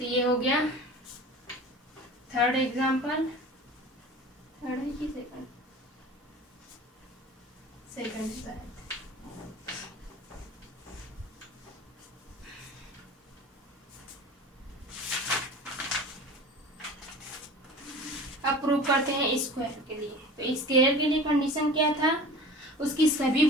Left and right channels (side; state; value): both; normal; correlation 0.39